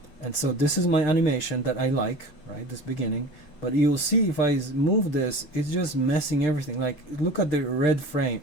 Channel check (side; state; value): right; late; 7.2 ms